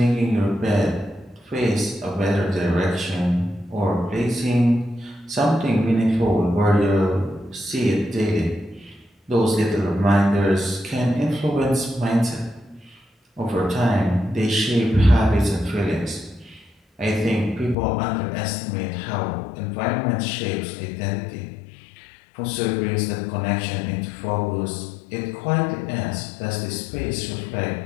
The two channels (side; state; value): right; drops out; at 17.8 s